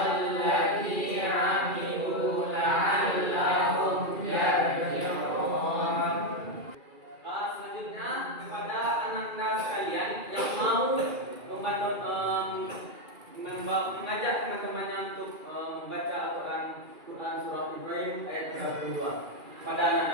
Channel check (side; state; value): left; late; 2.4 ms